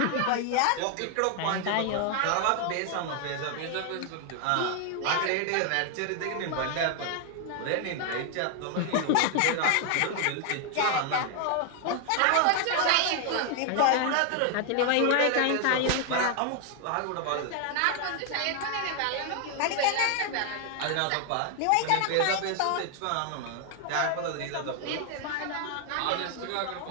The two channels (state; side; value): different; both; correlation 0.00